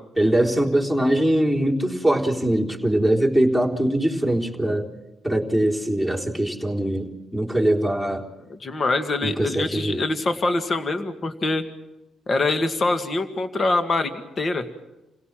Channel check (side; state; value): both; normal; correlation 0.93